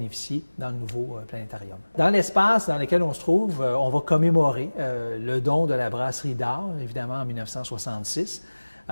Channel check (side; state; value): both; inverted; correlation -1.00